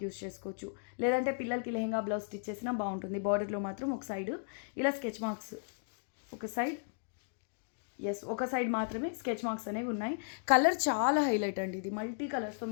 యూస్ చేసుకోవచ్చు. లేదంటే పిల్లలకి లెహంగా బ్లౌజ్ స్టిచ్ చేసినా బాగుంటుంది. బార్డర్లో మాత్రం ఒక సైడ్ ఇలా స్కెచ్ మార్క్స్, ఒక సైడ్ మాత్రమే స్కెచ్ మార్క్స్ అనేవి ఉన్నాయి. కలర్ చాలా హైలైట్ అండి. ఇది మల్టీ కలర్స్తో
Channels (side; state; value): right; silent; digital silence